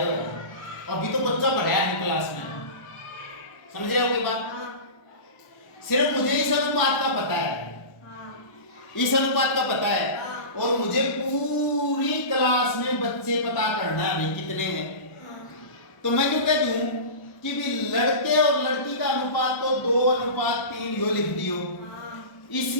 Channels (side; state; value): right; late; 1.1 ms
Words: हुए, अभी तो बच्चा पढ़ाया है क्लास में, समझ रहे हो कोई बात? सिर्फ मुझे इस अनुपात का पता है, इस अनुपात का पता है, और मुझे पूरी क्लास में बच्चे पता करना है भाई कितने हैं। तो मैं क्यों कह दूं कि भी लड़के और लड़की का अनुपात तो 2:3 यो लिख दियो।